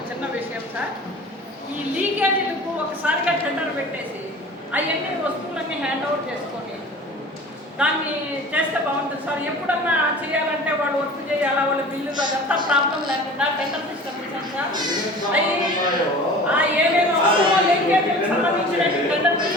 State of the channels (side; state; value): both; normal; correlation 0.41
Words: చిన్న విషయం సార్, ఈ లీకేజీలకు ఒకసారిగా టెండర్ పెట్టేసి అవన్నీ వస్తువులన్నీ హ్యాండ్ ఓవర్ చేసుకొని దాన్ని చేస్తే బాగుంటుంది సార్. ఎప్పుడన్నా చేయాలంటే వాడు వర్క్ చేయాలా, వాళ్ళ బిల్లు అదంతా ప్రాబ్లం లేకుండా టెండర్ సిస్టమ్ ఇచ్చాం సార్. అవి ఏమేమి అవసరమో లీకేజీలకు సంబంధించిన టెండర్